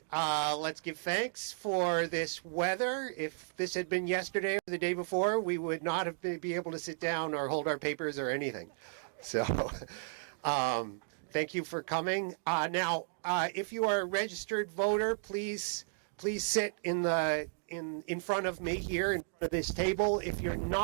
let's give thanks for this weather. If this had been yesterday or the day before, we would not have been able to sit down or hold our papers or anything. So thank you for coming. Now, if you are a registered voter, please sit in front of me here in front of this table. If you're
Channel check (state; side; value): silent; left; digital silence